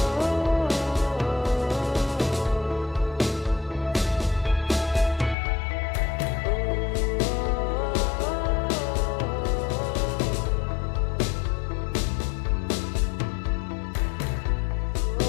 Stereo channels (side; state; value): right; drops out; at 5.4 s